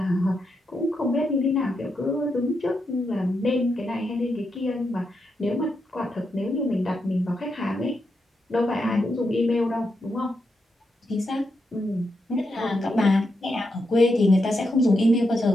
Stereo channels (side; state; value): both; normal; correlation 0.84